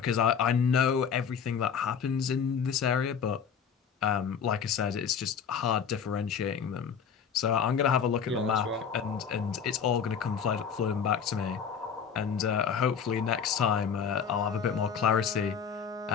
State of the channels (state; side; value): quieter; right; 7.1 dB